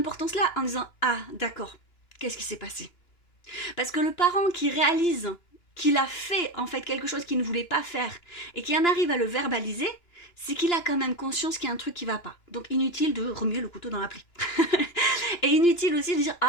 en disant, ah, d'accord, qu'est-ce qui s'est passé? Parce que le parent qui réalise qu'il a fait, en fait, quelque chose qu'il ne voulait pas faire et qui en arrive à le verbaliser, c'est qu'il a quand même conscience qu'il y a un truc qui va pas. Donc inutile de remuer le couteau dans la plaie. Et inutile aussi de dire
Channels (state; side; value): late; right; 2.9 ms